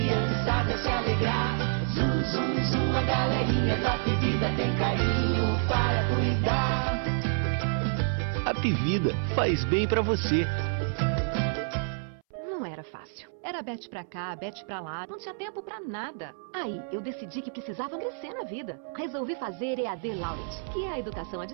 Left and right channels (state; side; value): silent; left; 59 dB below the other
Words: se alegrar. Zum, zum, zum, a galerinha da bebida tem carinho para cuidar. A Pivida faz bem pra você. Não era fácil. Era bete pra cá, bete pra lá, não tinha tempo pra nada. Aí, eu decidi que precisava crescer na vida. Resolvi fazer EAD Laureate, que é a educação à